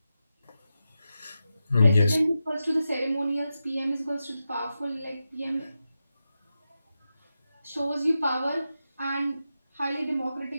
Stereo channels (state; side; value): inverted; both; correlation -0.90